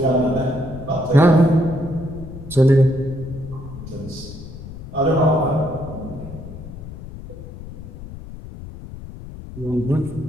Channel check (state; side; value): noise; left; rumble, 13 dB below the sound